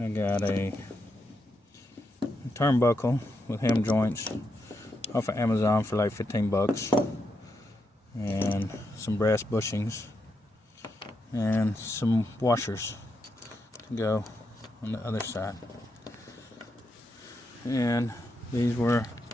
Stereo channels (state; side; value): normal; both; correlation 0.83